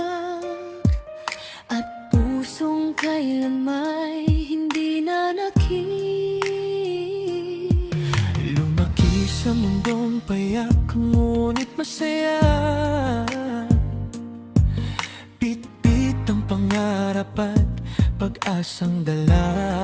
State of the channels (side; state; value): both; identical; correlation 1.00